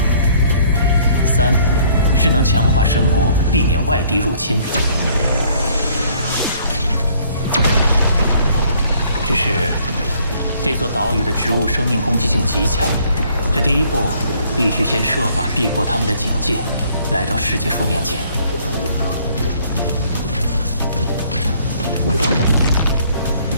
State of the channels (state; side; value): inverted; both; correlation -0.61